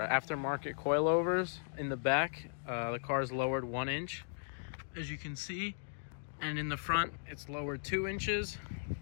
aftermarket coilovers in the back. The car is lowered 1 inch, as you can see, and in the front it's lowered 2 inches.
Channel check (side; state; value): right; silent; digital silence